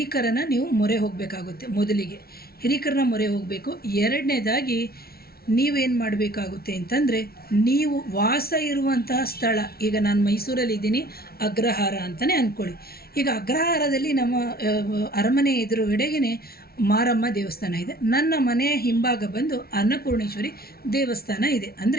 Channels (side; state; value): right; late; 0.44 ms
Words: ನೀವು ಮೊರೆ ಹೋಗಬೇಕಾಗುತ್ತೆ. ಮೊದಲಿಗೆ ಹಿರಿಕರನ್ನ ಮೊರೆ ಹೋಗಬೇಕು. ಎರಡನೇದಾಗಿ ನೀವೇನು ಮಾಡಬೇಕಾಗುತ್ತೆ ಅಂತಂದರೆ, ನೀವು ವಾಸ ಇರುವಂತಹ ಸ್ಥಳ, ಈಗ ನಾನು ಮೈಸೂರಲ್ಲಿದ್ದೀನಿ, ಅಗ್ರಹಾರ ಅಂತಲೇ ಅಂದ್ಕೊಳ್ಳಿ. ಈಗ ಅಗ್ರಹಾರದಲ್ಲಿ ನಮ್ಮ ಅರಮನೆ ಎದುರುಗಡೆಗೇ ಮಾರಮ್ಮ ದೇವಸ್ಥಾನ ಇದೆ. ನನ್ನ ಮನೆಯ ಹಿಂಭಾಗ ಬಂದು ಅನ್ನಪೂರ್ಣೇಶ್ವರಿ ದೇವಸ್ಥಾನ ಇದೆ.